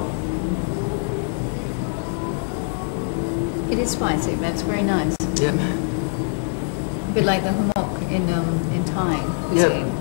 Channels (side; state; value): right; silent; digital silence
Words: It is spicy, but it's very nice. Yep. A bit like the humok in Thai cuisine.